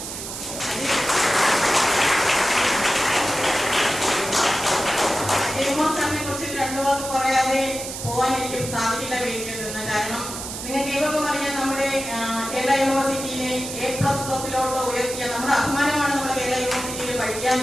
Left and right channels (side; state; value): right; noise; hiss, 8 dB below the sound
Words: സാറിനെ കുറിച്ച് 2 വാക്ക് പറയാതെ പോകാൻ എനിക്ക് സാധിക്കില്ല വേദിയിൽ നിന്ന്. കാരണം നിങ്ങൾക്ക് ഏവർക്കും അറിയാം, നമ്മുടെ കേരള യൂണിവേഴ്സിറ്റിയിലെ A++ ഉയർത്തിയ നമ്മുടെ അഭിമാനമാണ് നമ്മുടെ കേരള യൂണിവേഴ്സിറ്റിയിൽ പഠിക്കുക